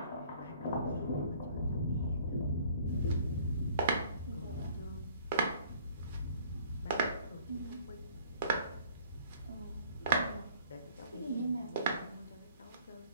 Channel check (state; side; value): inverted; both; correlation -0.55